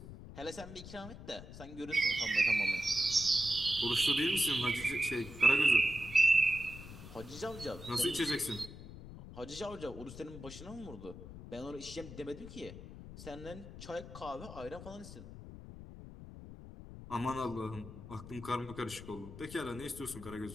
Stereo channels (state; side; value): noise; left; rumble, 13 dB below the sound